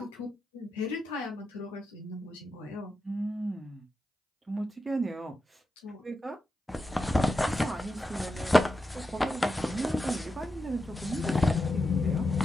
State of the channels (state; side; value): normal; both; correlation 0.89